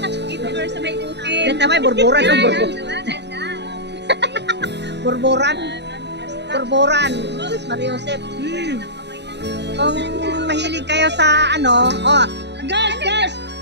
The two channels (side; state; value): left; late; 0.50 ms